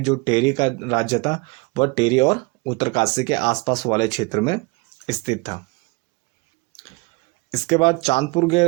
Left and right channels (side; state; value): left; quieter; 26.6 dB